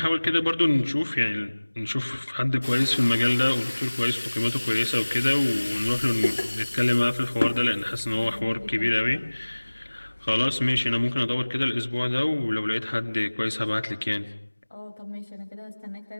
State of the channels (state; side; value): inverted; both; correlation -1.00